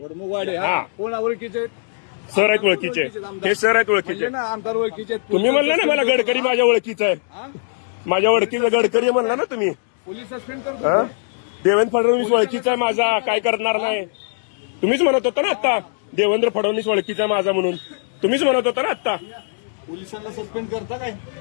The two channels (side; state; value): right; silent; digital silence